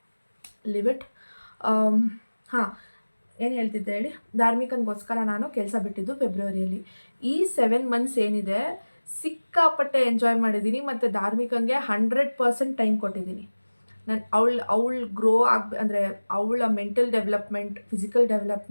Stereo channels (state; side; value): inverted; both; correlation -1.00